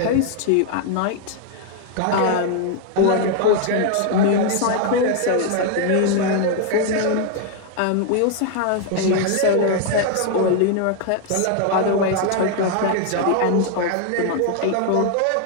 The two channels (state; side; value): different; both; correlation 0.00